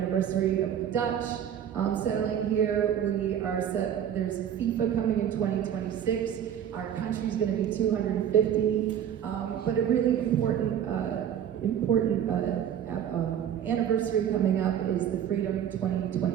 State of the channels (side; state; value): left; quieter; 9.5 dB